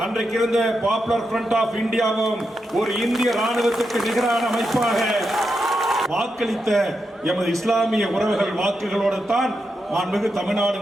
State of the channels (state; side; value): normal; both; correlation 0.86